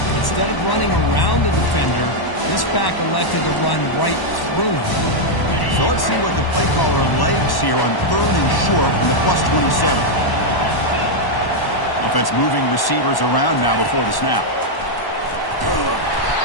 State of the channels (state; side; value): late; right; 1.1 ms